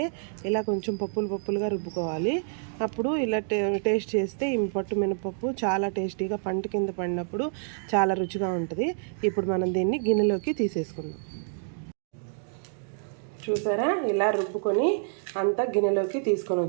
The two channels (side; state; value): left; silent; digital silence